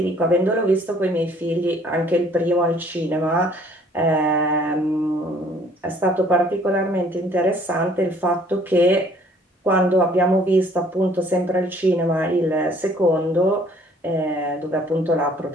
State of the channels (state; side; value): normal; both; correlation 0.58